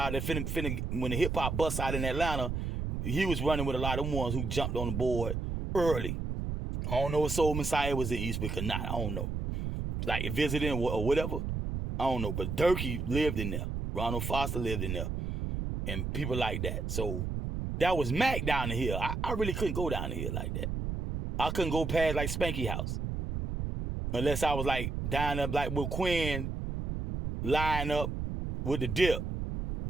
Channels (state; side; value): noise; right; rumble, 3 dB below the sound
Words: that when the hip hop bust out in Atlanta, he was running with a lot of them ones who jumped on the board early. I don't know if Soul Messiah was in Eastwick or not. I don't know. Like visiting or whatever. I don't know. But Durkee lived in there. Ronald Foster lived in there. And people like that. So that was Mac down the hill. I really couldn't go down the hill like that. I couldn't go past like Spanky House. Unless I was like down there like with Quinn lying up with the dip.